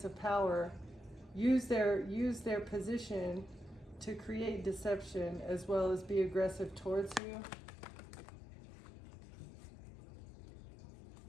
of power use their position to create deception as well as be aggressive towards you.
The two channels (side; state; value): right; drops out; at 7.2 s